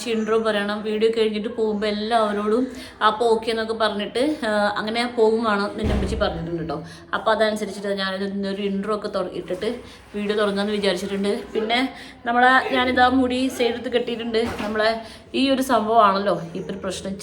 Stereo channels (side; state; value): both; identical; correlation 1.00